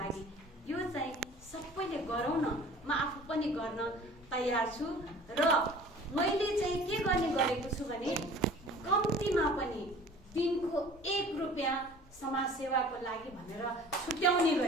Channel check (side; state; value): both; normal; correlation 0.46